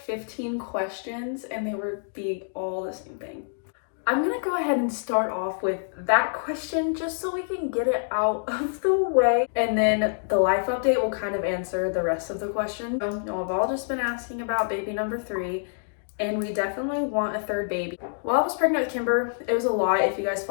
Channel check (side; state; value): right; silent; digital silence